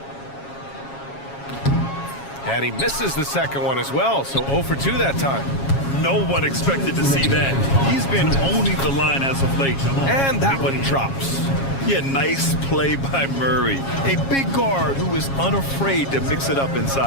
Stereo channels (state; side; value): late; right; 7.3 ms